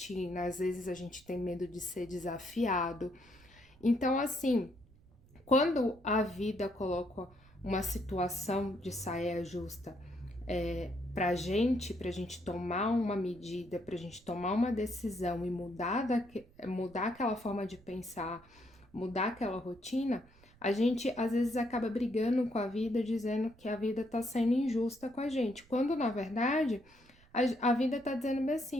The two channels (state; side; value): noise; right; rumble, 26 dB below the sound